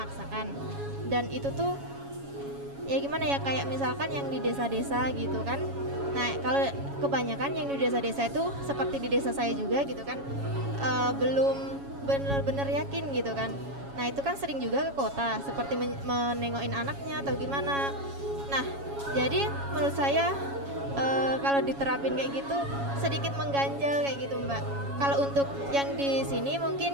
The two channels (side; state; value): left; late; 7.2 ms